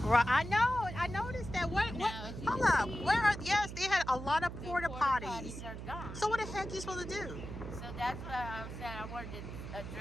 Right. I know. I noticed that. What? Hold up. Where are? Yes, they had a lot of porta potties. Are gone. So what the heck are you supposed to do? So that's what I said. I wanted to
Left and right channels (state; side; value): noise; right; hum, 9 dB below the sound